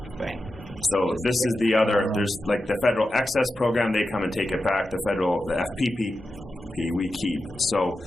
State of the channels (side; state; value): both; normal; correlation 0.90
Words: Right. So this is the other. There's like the federal excess program. They come and take it back. The FPP we keep. So,